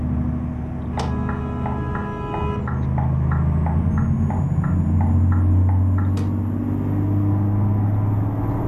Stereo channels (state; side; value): identical; both; correlation 1.00